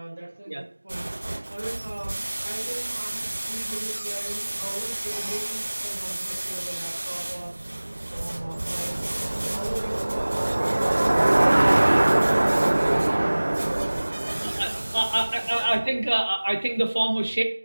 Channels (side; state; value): both; inverted; correlation -1.00